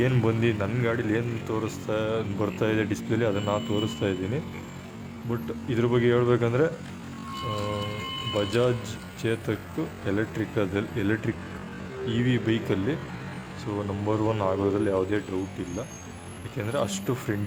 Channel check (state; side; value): identical; both; correlation 1.00